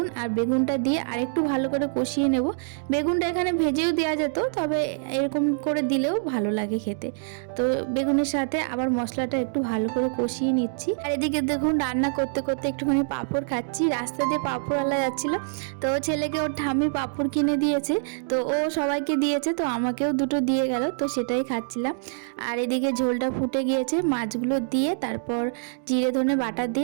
আর বেগুনটা দিয়ে আরেকটু ভালো করে কষিয়ে নেব। বেগুনটা এখানে ভেজেও দেওয়া যেত, তবে এরকম করে দিলেও ভালো লাগে খেতে। তো বেগুনের সাথে আবার মশলাটা একটু ভালো করে কষিয়ে নিচ্ছি। আর এদিকে দেখুন রান্না করতে করতে একটুখানি পাঁপড় খাচ্ছি। রাস্তা দিয়ে পাঁপড়ওয়ালা যাচ্ছিল, তো ছেলেকে ওর ঠাম্মি পাঁপড় কিনে দিয়েছে, তো ও সবাইকে দিয়েছে, তো আমাকেও দুটো দিয়ে গেল, তো সেটাই খাচ্ছিলাম। আর এদিকে ঝোলটা ফুটে গিয়েছে, মাছগুলো দিয়ে তারপর জিরে ধনে বাটা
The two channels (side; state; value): left; silent; digital silence